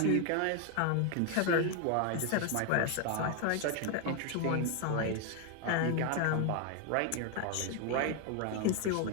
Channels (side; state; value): both; different; correlation 0.01